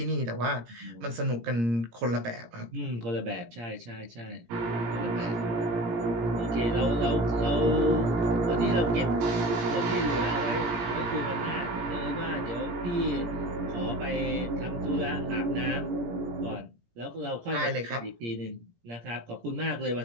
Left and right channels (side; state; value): left; late; 17 ms